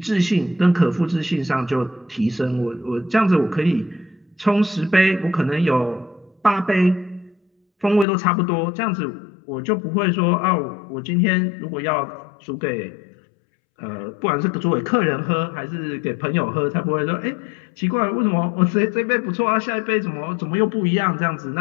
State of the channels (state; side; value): drops out; right; at 8.1 s